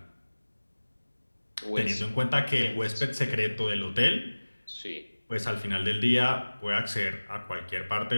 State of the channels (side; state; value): both; inverted; correlation -1.00